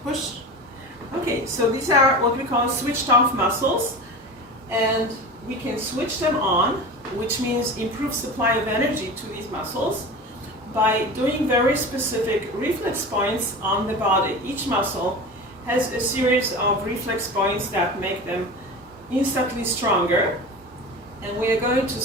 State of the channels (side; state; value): both; normal; correlation 0.31